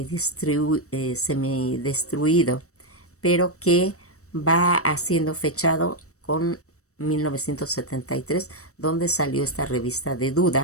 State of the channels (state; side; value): late; right; 0.65 ms